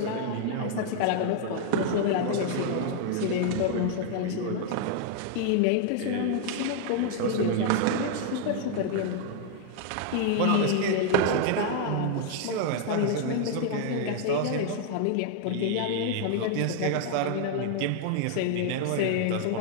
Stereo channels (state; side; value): different; both; correlation 0.00